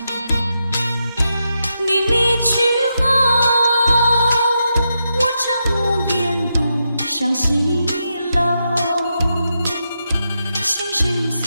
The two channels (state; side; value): inverted; both; correlation -0.85